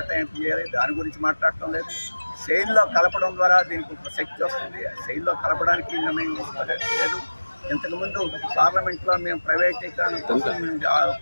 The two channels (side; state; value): both; inverted; correlation -1.00